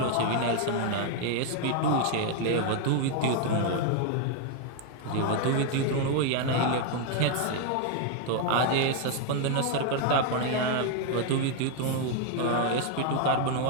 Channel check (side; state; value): both; different; correlation 0.00